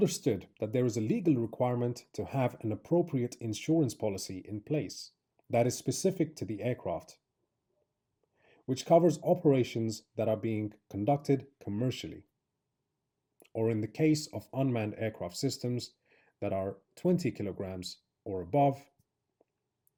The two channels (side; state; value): both; identical; correlation 1.00